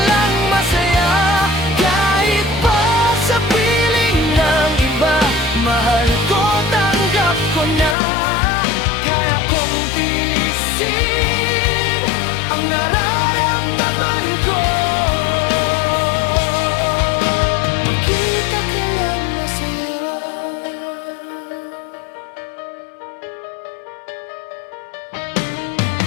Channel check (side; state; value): right; drops out; at 8.0 s